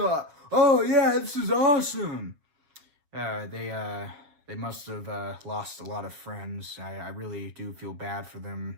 Oh yeah, this is awesome." They must have lost a lot of friends. I really do feel bad for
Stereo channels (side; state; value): left; late; 7.1 ms